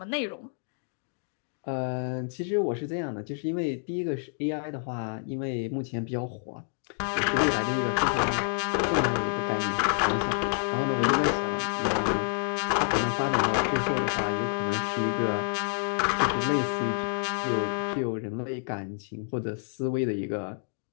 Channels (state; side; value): silent; right; digital silence